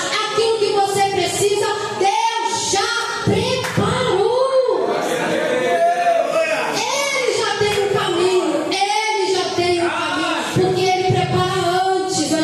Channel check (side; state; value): both; identical; correlation 1.00